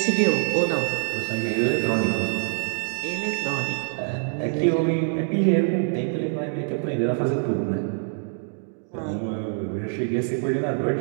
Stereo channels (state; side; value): silent; left; 62 dB below the other